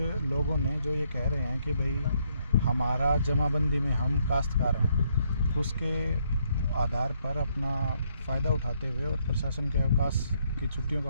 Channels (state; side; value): inverted; both; correlation -0.72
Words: लोगों ने जो ये कह रहे हैं कि भाई हमारा जमाबंदी में हम काश्तकार हैं, उसके आधार पर अपना फ़ायदा उठाते हुए और प्रशासन के अवकाश की छुट्टियों का